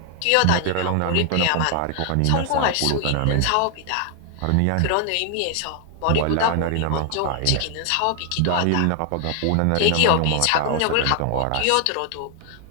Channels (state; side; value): different; both; correlation 0.00